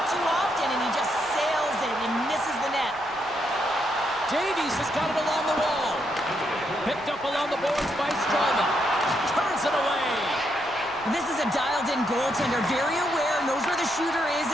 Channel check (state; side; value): noise; right; rumble, 23 dB below the sound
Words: too often, and he just sails it and misses the net. Davies has got it along the wall. Picked up along the boards by Strowman. Turns it away. This is a dialed-in goaltender, very aware, knows where the shooter is